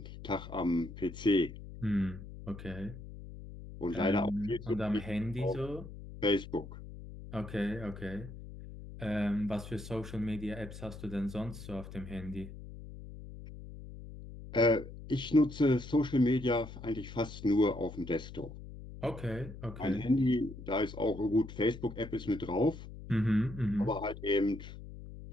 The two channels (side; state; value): left; noise; hum, 13 dB below the sound